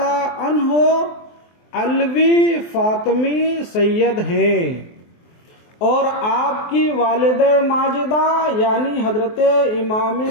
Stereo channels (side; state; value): right; late; 23 ms